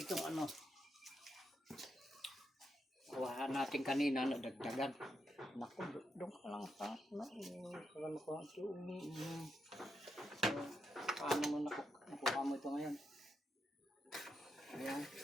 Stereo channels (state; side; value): normal; both; correlation 0.83